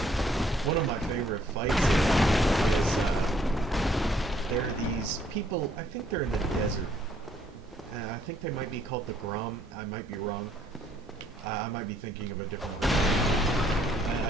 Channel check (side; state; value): both; normal; correlation 0.66